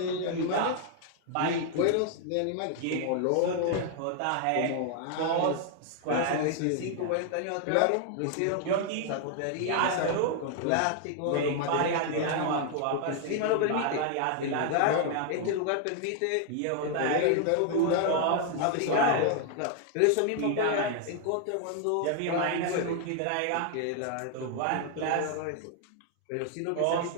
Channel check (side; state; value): both; different; correlation 0.00